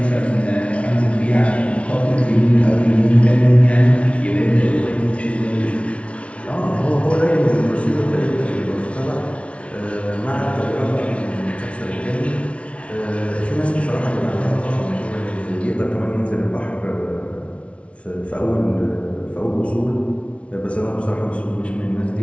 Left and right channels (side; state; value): right; late; 0.062 ms